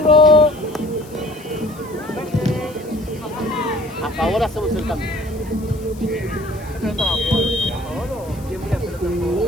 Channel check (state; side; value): noise; left; hiss, 22 dB below the sound